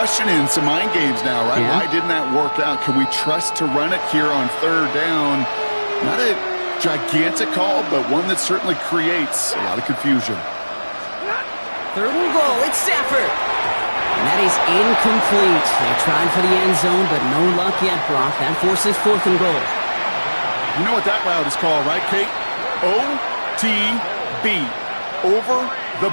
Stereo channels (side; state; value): both; inverted; correlation -1.00